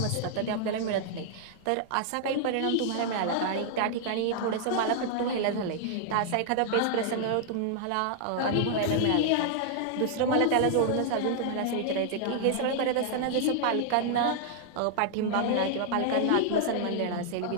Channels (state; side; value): different; both; correlation -0.01